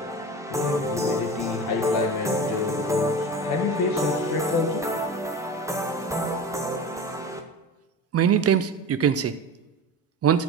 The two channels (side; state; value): both; normal; correlation 0.30